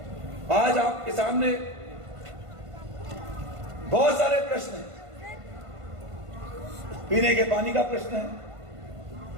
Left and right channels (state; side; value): late; left; 1.5 ms